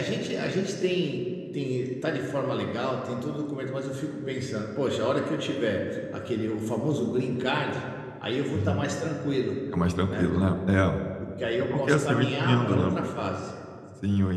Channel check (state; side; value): identical; both; correlation 1.00